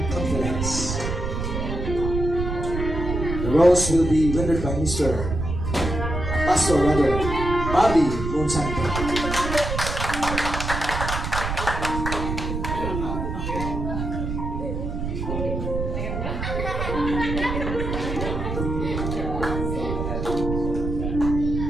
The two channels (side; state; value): right; noise; rumble, 3 dB below the sound